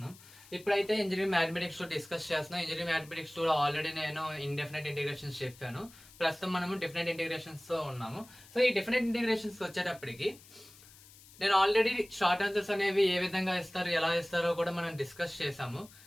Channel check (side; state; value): left; noise; hiss, 22 dB below the sound